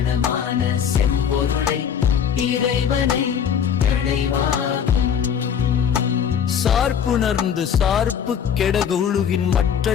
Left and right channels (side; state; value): right; quieter; 8.0 dB